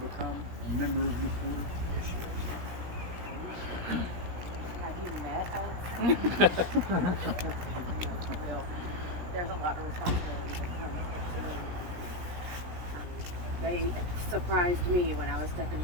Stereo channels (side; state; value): left; late; 17 ms